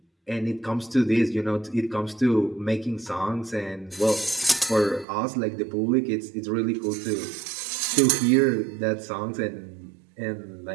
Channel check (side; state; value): left; drops out; at 5.1 s